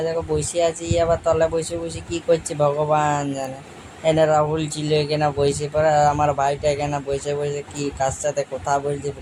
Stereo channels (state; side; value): identical; both; correlation 1.00